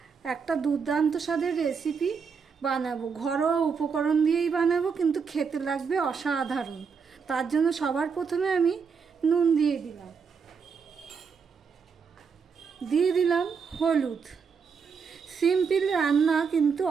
একটা দুর্দান্ত স্বাদের রেসিপি বানাবো, ঘরোয়া উপকরণ দিয়েই বানাবো, কিন্তু খেতে লাগবে অসাধারণ। তার জন্য সবার প্রথমে আমি নুন দিয়ে দিলাম হলুদ। সিম্পল রান্না কিন্তু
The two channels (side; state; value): left; quieter; 5.8 dB